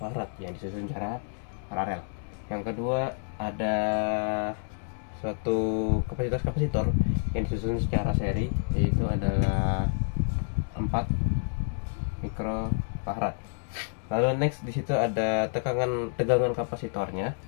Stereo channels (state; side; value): silent; right; digital silence